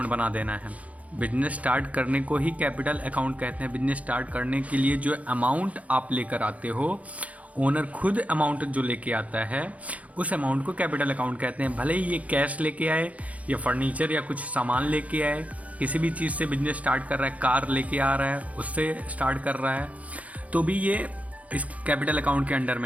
बना देना है। बिजनेस स्टार्ट करने को ही कैपिटल अकाउंट कहते हैं। बिजनेस स्टार्ट करने के लिए जो अमाउंट आप लेकर आते हो, ओनर खुद अमाउंट जो लेके आता है, उस अमाउंट को कैपिटल अकाउंट कहते हैं। भले ही ये कैश लेके आए या फर्नीचर या कुछ सामान लेके आए, किसी भी चीज़ से बिजनेस स्टार्ट कर रहा है, कार लेके आ रहा है, उससे स्टार्ट कर रहा है, तो भी ये इस कैपिटल अकाउंट के अंडर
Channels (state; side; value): late; left; 0.068 ms